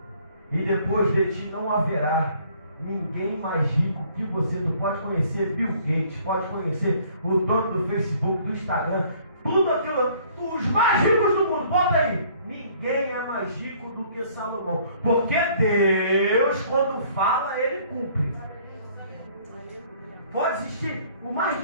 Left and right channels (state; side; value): inverted; both; correlation -0.58